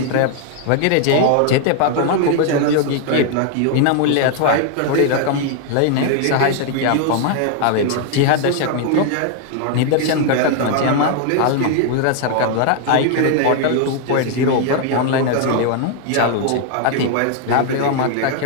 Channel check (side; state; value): both; different; correlation 0.00